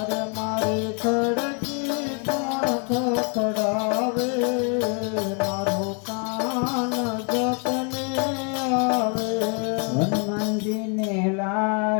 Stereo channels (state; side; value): quieter; right; 38.0 dB